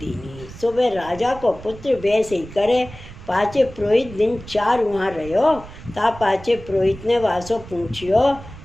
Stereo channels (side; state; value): right; noise; rumble, 16 dB below the sound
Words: सुबह राजा को पुत्र वैसे ही करे। पाचे पुरोहित दिन 4 वहाँ रहो। ता पाचे पुरोहित ने वासो पूछियो